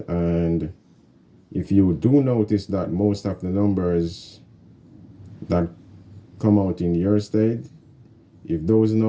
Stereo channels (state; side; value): identical; both; correlation 1.00